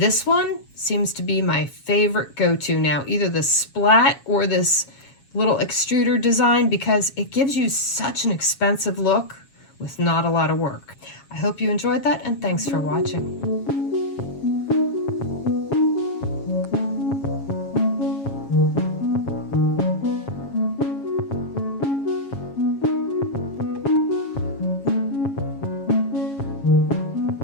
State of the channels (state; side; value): late; right; 7.3 ms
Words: one seems to be my favorite go-to now, either the Splat or this little extruder design, because it gives you such an expensive look with not a lot of work. I hope you enjoyed that, and thanks for watching.